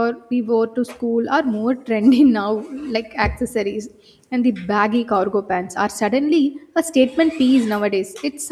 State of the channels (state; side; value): identical; both; correlation 1.00